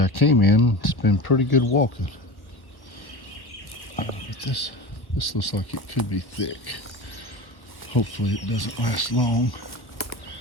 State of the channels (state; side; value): late; right; 1.1 ms